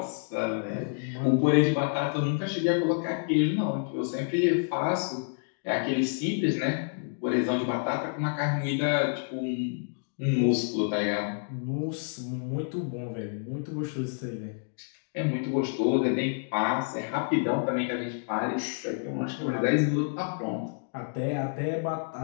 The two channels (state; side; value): silent; right; digital silence